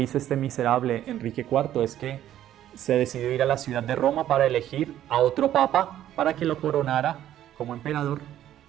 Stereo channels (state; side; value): quieter; left; 12.0 dB